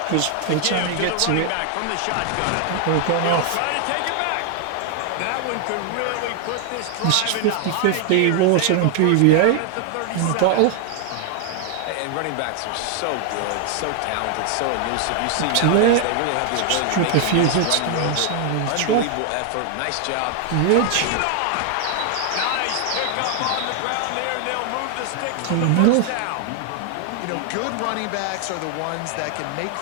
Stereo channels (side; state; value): both; different; correlation 0.00